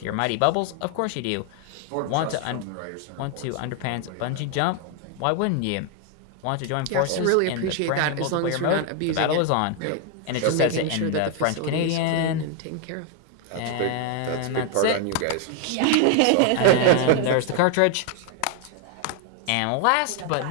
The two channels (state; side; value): different; both; correlation 0.01